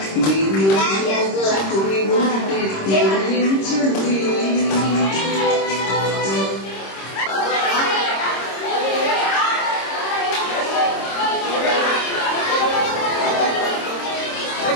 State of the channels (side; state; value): right; late; 26 ms